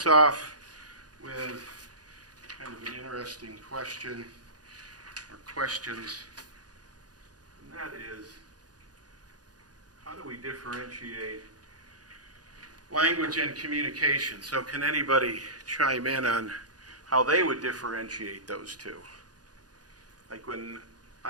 off with kind of an interesting question or questions, and that is, how do we differentiate language and communication? So can anybody chime in on how they would differentiate those 2? Like when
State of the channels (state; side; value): late; left; 0.69 ms